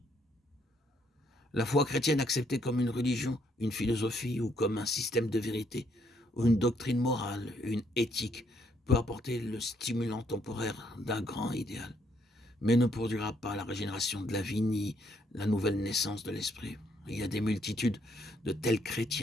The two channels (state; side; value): normal; both; correlation 0.71